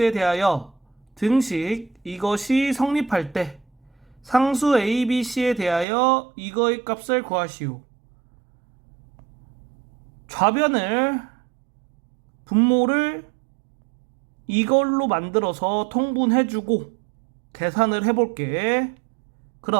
대하여 등식 이것이 성립할 때 상수 ABC에 대하여 이거의 값을 구하시오. 좌변을 분모를 이걸로 만들어서 통분해주고 계산을 해볼게.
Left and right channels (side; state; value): left; drops out; at 5.9 s